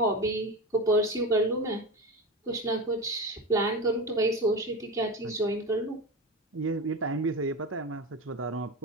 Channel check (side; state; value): both; normal; correlation 0.24